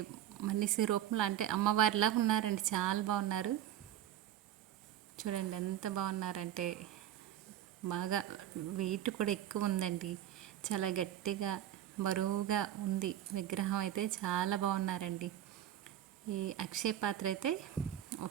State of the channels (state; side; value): quieter; left; 11.6 dB